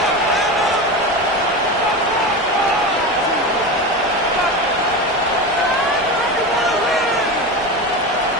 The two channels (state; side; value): normal; both; correlation 0.23